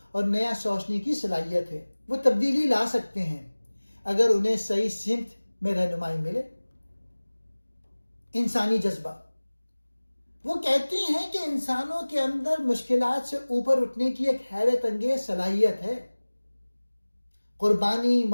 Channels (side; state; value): both; inverted; correlation -1.00